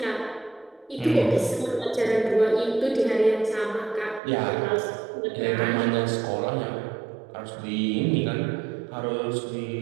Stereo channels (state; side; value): drops out; left; at 4.2 s